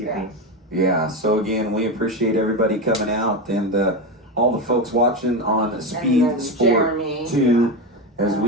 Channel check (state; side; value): normal; both; correlation 0.16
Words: Yeah, so again, we appreciate everybody coming out and all the folks watching on Speed Sport 2, as